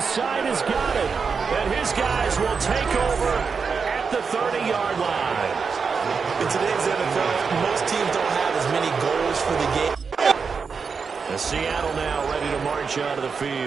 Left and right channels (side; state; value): left; quieter; 5.4 dB